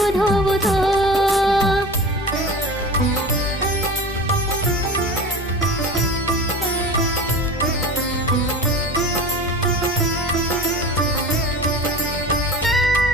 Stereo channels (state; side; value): normal; both; correlation 0.34